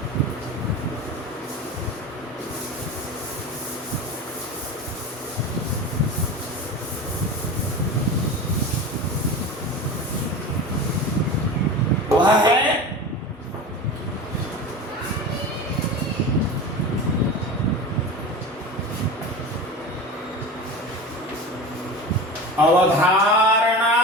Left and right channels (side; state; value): both; normal; correlation 0.29